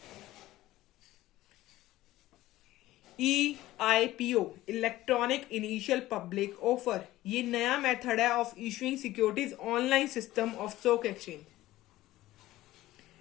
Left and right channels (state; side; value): quieter; right; 16.1 dB